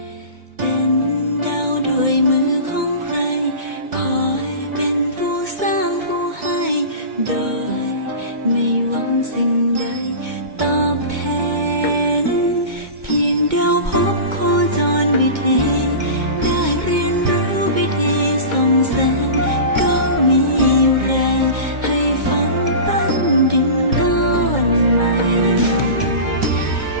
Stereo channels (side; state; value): left; late; 2.2 ms